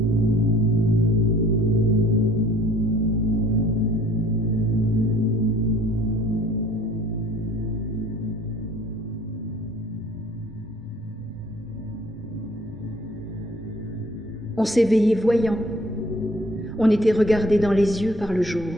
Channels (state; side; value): normal; both; correlation 0.55